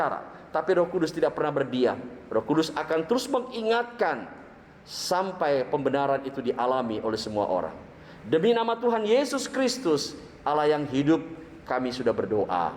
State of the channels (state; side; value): identical; both; correlation 1.00